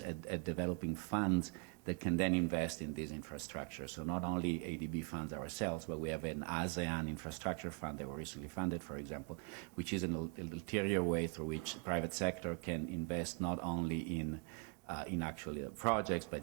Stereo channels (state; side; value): quieter; left; 34.3 dB